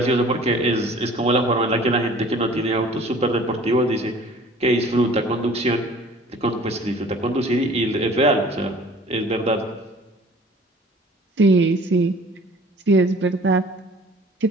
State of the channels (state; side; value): normal; both; correlation 0.49